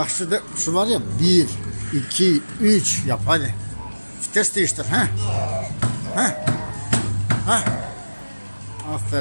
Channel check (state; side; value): inverted; both; correlation -1.00